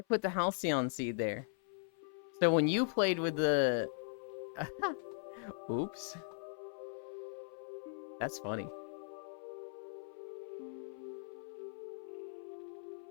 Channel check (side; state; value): right; silent; 52 dB below the other